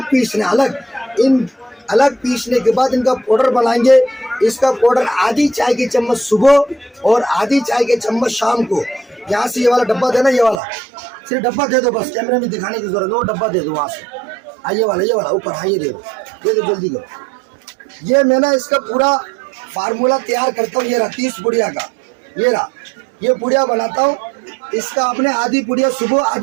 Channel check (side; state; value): left; drops out; at 10.6 s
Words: पीसना, अलग पीसने के बाद इनका पाउडर बनाएंगे। इसका पाउडर आधी चाय की चम्मच सुबह और आधी चाय के चम्मच शाम को। यहाँ से ये वाला डब्बा देना, ये वाला सिर्फ डब्बा दे दो, बस कैमरे में दिखाने की जरूरत है, वो डब्बा दे दो वहाँ से। ये वाला ऊपर, हाँ ये दे दो जल्दी करो। ये मैं ना इसका पूरा फार्मूला तैयार करता हूँ। ये रहा 30 पुड़िया का, ये पुड़िया बनाता हूँ। इसका आपने आधी पुड़िया सुबह